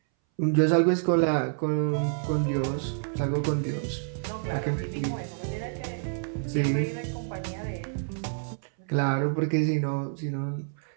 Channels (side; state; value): left; silent; 59 dB below the other